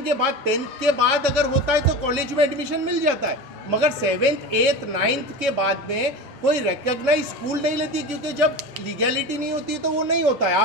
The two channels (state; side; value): normal; both; correlation 0.29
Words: के बाद 10th के बाद अगर होता है तो कॉलेज में एडमिशन मिल जाता है, मगर 7th 8th 9th के बाद में कोई रिकग्नाइज स्कूल नहीं लेती, क्योंकि जब लीगैलिटी नहीं होती तो वो नहीं होता है।